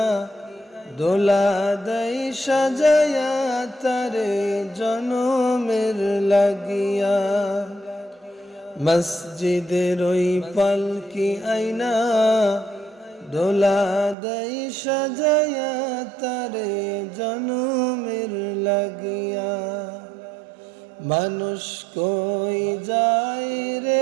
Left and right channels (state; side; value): drops out; left; at 14.2 s